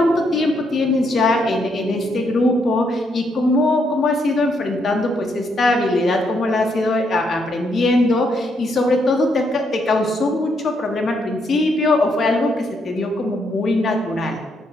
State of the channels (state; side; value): normal; both; correlation 0.75